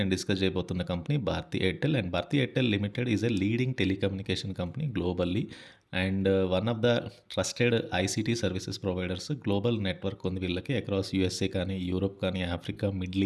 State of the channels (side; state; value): both; identical; correlation 1.00